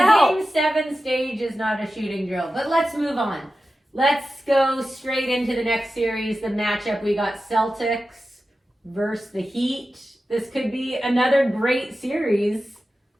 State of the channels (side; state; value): both; normal; correlation 0.93